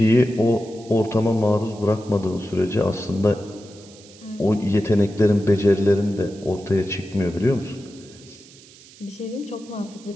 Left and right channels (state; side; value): noise; right; hiss, 23 dB below the sound